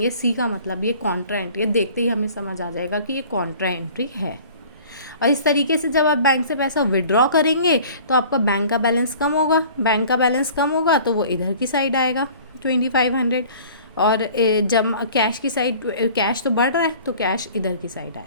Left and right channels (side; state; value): both; inverted; correlation -0.48